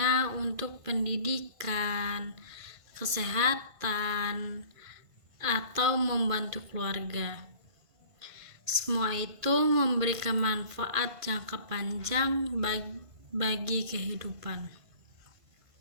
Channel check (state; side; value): late; left; 1.5 ms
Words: untuk pendidikan, kesehatan, atau membantu keluarga. Semua itu memberikan manfaat jangka panjang bagi kehidupan.